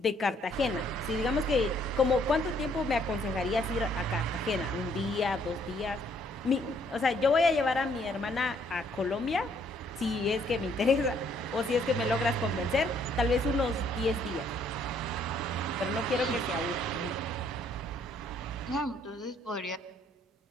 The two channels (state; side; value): normal; both; correlation 0.66